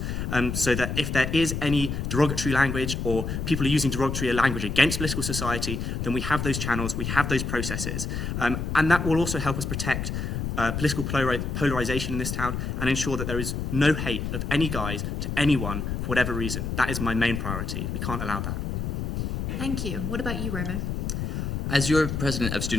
so that if there is any derogatory language or people are using derogatory language against political society, then we have those channels, we have those processes. And that will also help us protect political polarization in this town and ensure that there is no hate of any guise to anyone for whatever reason. That is my main priority. We can't allow that. Thank you. What about you, Romo? As your president of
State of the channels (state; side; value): noise; left; rumble, 3 dB below the sound